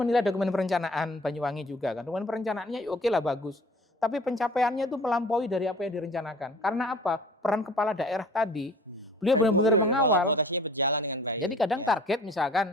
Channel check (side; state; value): both; normal; correlation 0.47